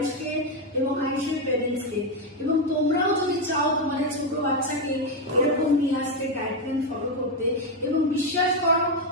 এবং আয়ুষের প্যারেন্টসকে। এবং তোমরাও যদি চাও তোমাদের ছোট বাচ্চাকে এরকম নিয়ে আসতে, ডায়েট প্ল্যান ফলো করতে, এবং বিশ্বাস করো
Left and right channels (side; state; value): both; normal; correlation 0.06